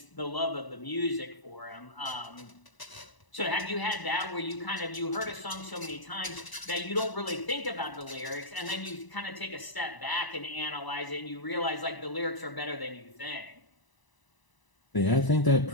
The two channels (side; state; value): right; late; 1.0 ms